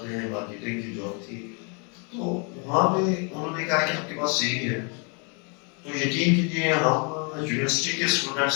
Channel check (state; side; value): quieter; right; 35.6 dB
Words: ہے. مارکیٹنگ کی جاب تھی. تو وہاں پہ انہوں نے کہا کہ آپ کے پاس سی وی ہے. تو یقین کیجیے ہم یونیورسٹی کے